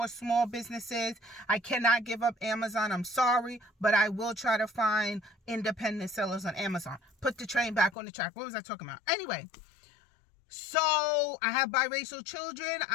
small businesses. I cannot give up Amazon. I'm sorry, but I will try to find independent sellers on Amazon. Put the train back on the track. What was I talking about? Anyway. So I have biracial children.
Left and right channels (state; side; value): drops out; right; at 8.0 s